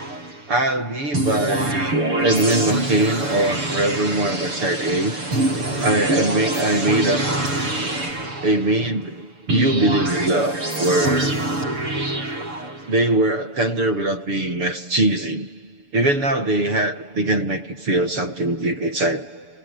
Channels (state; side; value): late; left; 6.9 ms